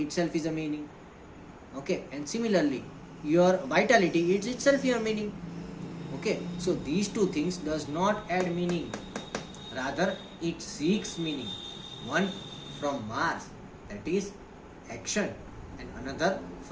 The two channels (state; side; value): identical; both; correlation 1.00